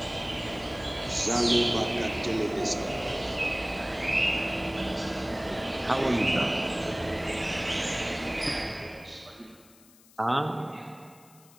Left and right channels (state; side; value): noise; left; hiss, 26 dB below the sound